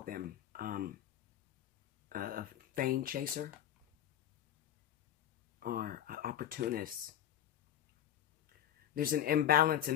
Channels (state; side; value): quieter; right; 11.0 dB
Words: them? A fame chaser? Or an opportunist. There's an imbalance in